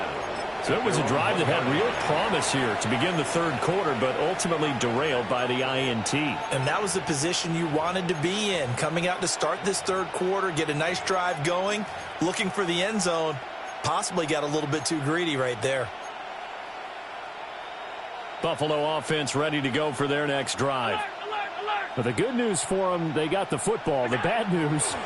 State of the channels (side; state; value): both; identical; correlation 1.00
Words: So it was a drive that had real promise here to begin the third quarter, but ultimately derailed by the INT. And that was the position you wanted to be in. Coming out to start this third quarter, get a nice drive going, looking for the end zone. Possibly got a little bit too greedy right there. Buffalo offense ready to go for their next drive. But the good news for them, they got the football. The bad news,